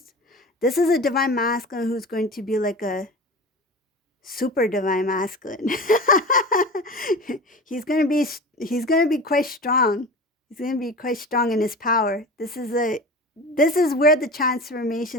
a divine masculine who's going to be like a super divine masculine. he's gonna be quite strong. He's gonna be quite strong in his power. This is where the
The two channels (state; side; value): normal; both; correlation 0.33